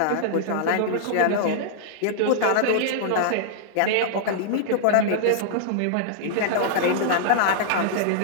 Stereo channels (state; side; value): different; both; correlation -0.01